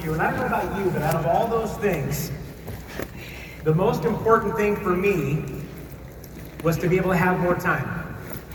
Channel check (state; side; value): identical; both; correlation 1.00